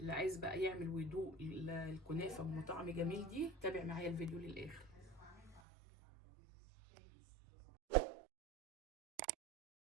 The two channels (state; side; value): drops out; left; at 5.6 s